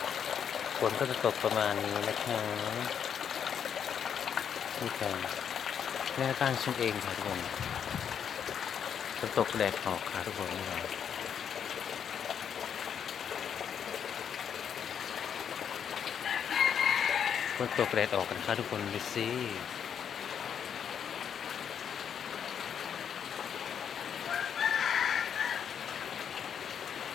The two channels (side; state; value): right; quieter; 8.0 dB